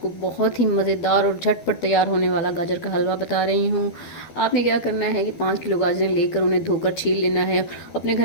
बहुत ही मज़ेदार और झटपट तैयार होने वाला गाजर का हलवा बता रही हूँ। आपने क्या करना है कि 5 किलो गाजरें लेकर उन्हें धोकर छील लेना है। अपने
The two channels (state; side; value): late; right; 12 ms